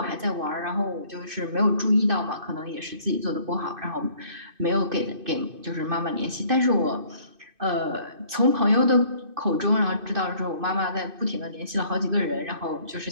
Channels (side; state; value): left; late; 2.6 ms